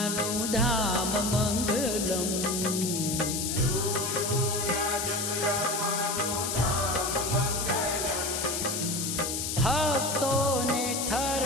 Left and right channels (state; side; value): noise; left; hiss, 2 dB below the sound